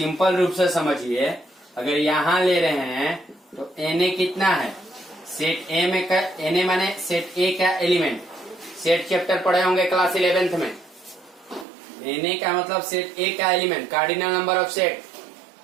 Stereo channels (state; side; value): drops out; left; at 11.7 s